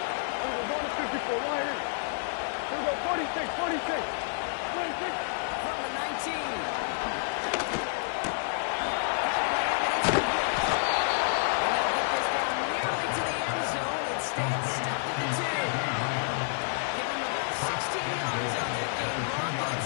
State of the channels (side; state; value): right; silent; digital silence